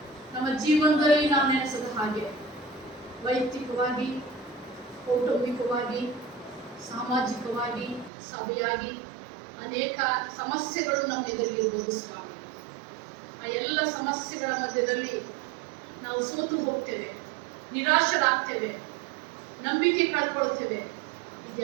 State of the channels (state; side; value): drops out; left; at 8.1 s